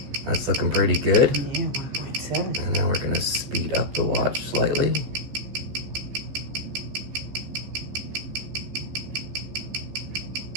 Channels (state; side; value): late; left; 15 ms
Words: that's looking pretty good. Yeah, 1.7. And now we're going to speed up the watch slightly.